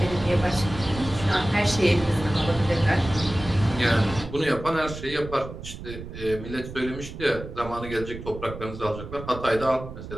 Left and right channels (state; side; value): noise; right; rumble, 11 dB below the sound